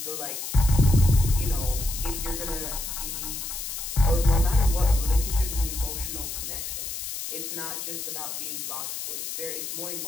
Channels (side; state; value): left; noise; hiss, 6 dB below the sound